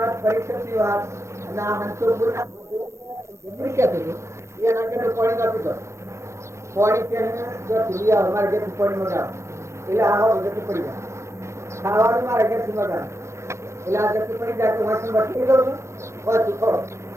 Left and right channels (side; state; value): left; late; 0.14 ms